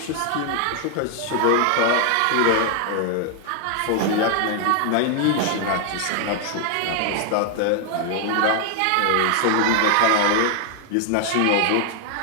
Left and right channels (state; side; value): different; both; correlation 0.00